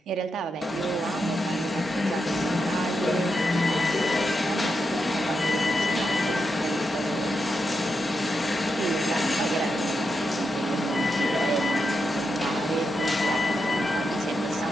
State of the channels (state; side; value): normal; both; correlation 0.85